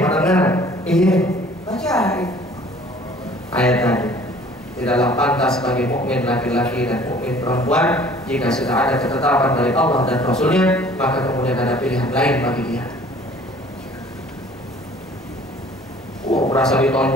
Iya, baca ayat tadi. Tidaklah pantas bagi mukmin laki-laki dan mukmin perempuan jika sudah ada ketetapan dari Allah dan Rasulnya, maka kemudian ada pilihan lain bagi dia. Berasa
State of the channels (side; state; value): both; normal; correlation 0.52